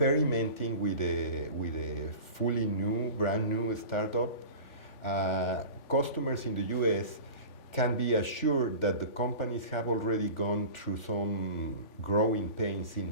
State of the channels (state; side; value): late; right; 3.4 ms